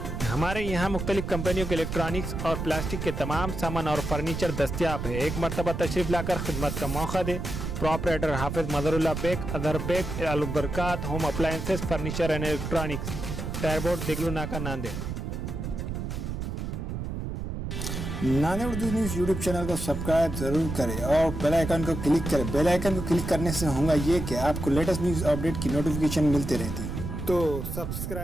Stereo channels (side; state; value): right; noise; rumble, 5 dB below the sound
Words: हमारे यहाँ मुख्तलिफ कंपनियों के इलेक्ट्रॉनिक्स और प्लास्टिक के तमाम सामान और फर्नीचर दस्तियाब है। एक मरतबा तशरीफ लाकर खिदमत का मौका दे। Proprietor Hafiz Madarullah Baig, Adar Baig, Albarkat home appliances, furniture and electronics, टायरबोर्ड, Deglur Naka, Nanded. Nanded Urdu news YouTube channel को सब्सक्राइब जरूर करें और बेल आइकन को क्लिक करें। बेल आइकन को क्लिक करने से होगा ये कि आपको लेटेस्ट न्यूज़ अपडेट की नोटिफिकेशन मिलती रहती है, तो